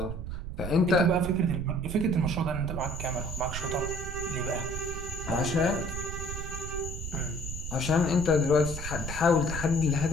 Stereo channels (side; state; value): right; noise; rumble, 6 dB below the sound